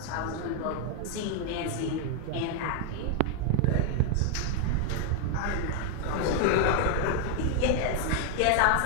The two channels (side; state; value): both; different; correlation 0.00